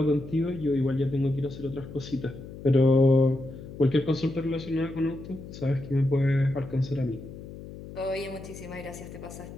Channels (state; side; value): noise; left; hum, 13 dB below the sound